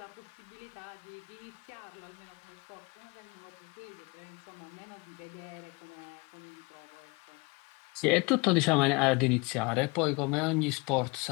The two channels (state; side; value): quieter; right; 27.3 dB